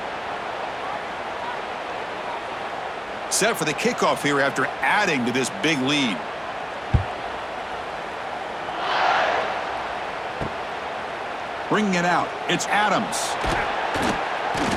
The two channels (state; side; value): identical; both; correlation 1.00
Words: Set for the kickoff here after adding to this big lead. Bringing it out, it's Adams.